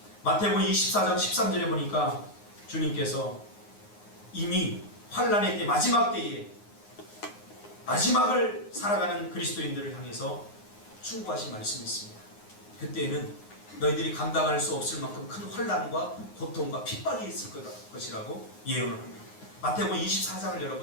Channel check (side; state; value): right; late; 9.6 ms